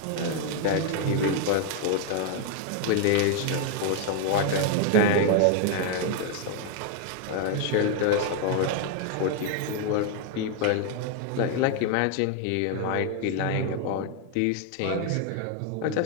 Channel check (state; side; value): different; both; correlation 0.01